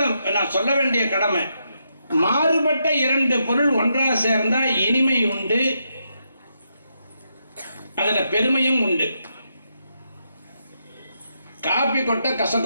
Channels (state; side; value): inverted; both; correlation -0.81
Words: நான் சொல்ல வேண்டிய கடமை, மாறுபட்ட இரண்டு பொருள் ஒன்றாக சேர்ந்தா இனிமை உண்டு, அதுல பெருமையும் உண்டு. காபி கொட்ட